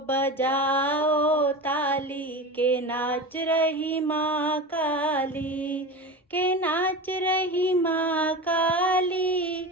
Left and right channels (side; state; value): both; normal; correlation 0.27